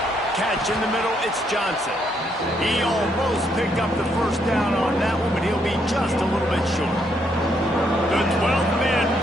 Catch in the middle, it's Johnson. He almost picked up the first down on that one, but he'll be just a little bit short. The 12th man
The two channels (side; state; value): both; normal; correlation 0.74